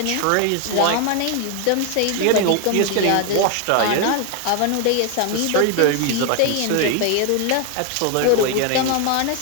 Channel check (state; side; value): different; both; correlation 0.01